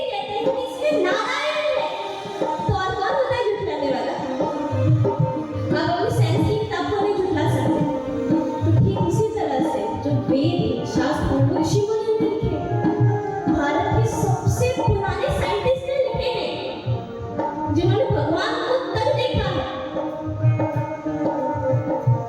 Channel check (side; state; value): both; identical; correlation 1.00